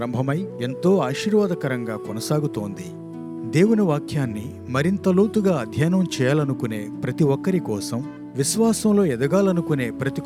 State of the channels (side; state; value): both; identical; correlation 1.00